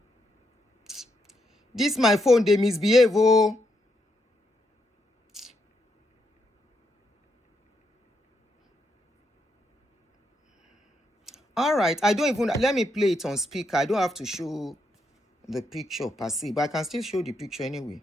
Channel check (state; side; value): normal; both; correlation 0.79